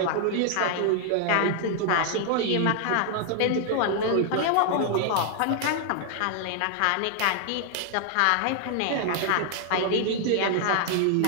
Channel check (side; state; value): both; different; correlation 0.00